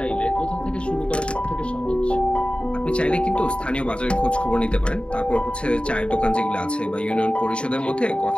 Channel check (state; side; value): late; right; 0.056 ms